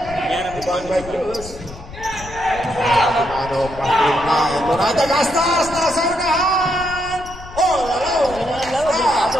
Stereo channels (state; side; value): noise; left; rumble, 15 dB below the sound